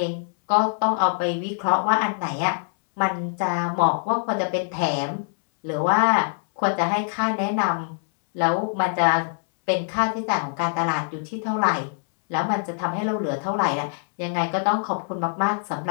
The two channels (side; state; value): right; silent; 63 dB below the other